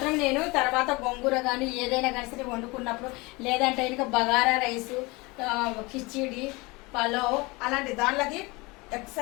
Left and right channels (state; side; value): quieter; right; 24.6 dB